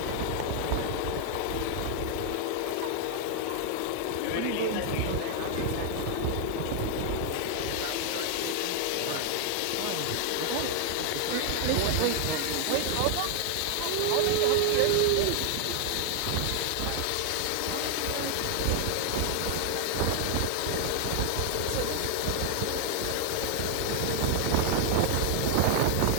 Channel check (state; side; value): different; both; correlation 0.00